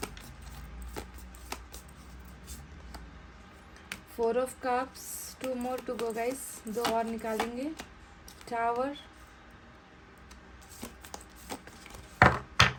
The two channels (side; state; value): both; identical; correlation 1.00